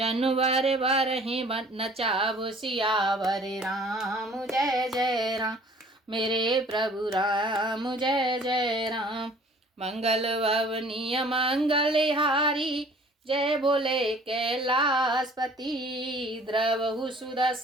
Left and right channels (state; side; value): normal; both; correlation 0.52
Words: वर ही नचाव। सियावर राम जय जय राम मेरे प्रभु राम जय जय राम। मंगल भवनीय मंगलहारी जय बोले कैलाशपति। द्रवहु